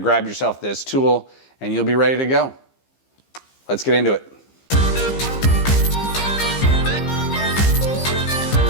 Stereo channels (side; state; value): right; late; 15 ms